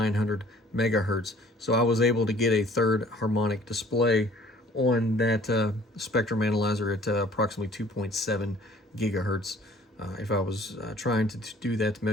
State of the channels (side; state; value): both; normal; correlation 0.53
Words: megahertz. So I was able to get a third harmonic display on that spectrum analyzer at approximately 2.7 gigahertz. If I was trying to do that